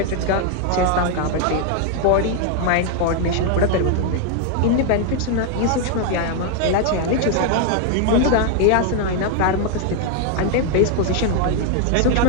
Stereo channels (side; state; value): both; different; correlation 0.00